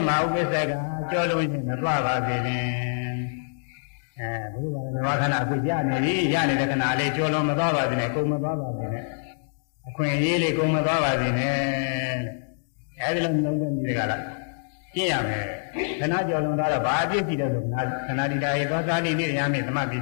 မဥပ္ပစေကကြောလုံးချင်းမသွားပါစေနဲ့ဘုရားပါရနောခဏအခုရနေပြီရနေတဲ့ခဏလေးကြောလုံးမသွားပါစေနဲ့ကုန်မသွားပါစေနဲ့အခွင့်အရေးလေးကုန်မသွားပါစေနဲ့အဲဒီလိုနှလုံးသွင်းပြီးကြလားကျင့်ရမယ်ခဏကြောလုံးသွားတော့ဘာအပြစ်ရှိတယ်လို့ခဏဒီတာရေသောသာတိနိရမေသမပိ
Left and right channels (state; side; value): silent; right; digital silence